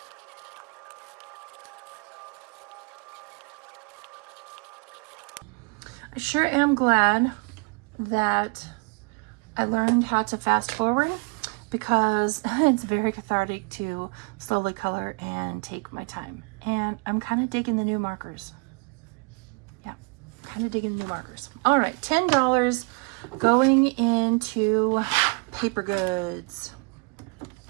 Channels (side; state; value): left; quieter; 32.1 dB